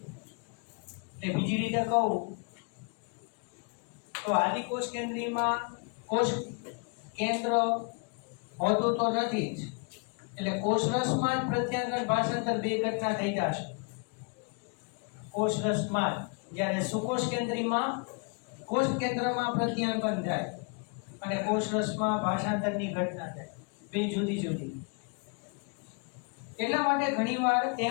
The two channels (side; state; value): right; quieter; 35.1 dB